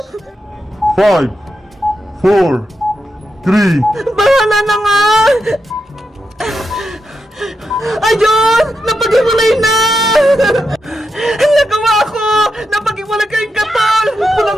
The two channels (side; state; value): both; normal; correlation 0.86